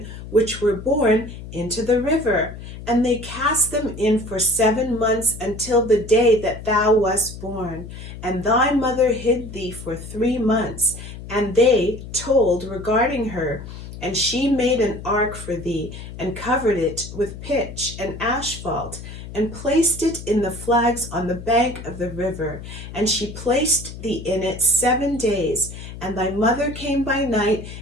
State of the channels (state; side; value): noise; left; hum, 12 dB below the sound